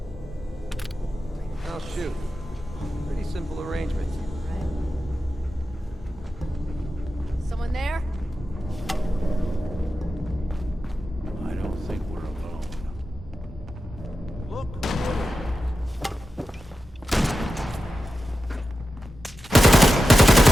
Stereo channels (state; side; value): normal; both; correlation 0.92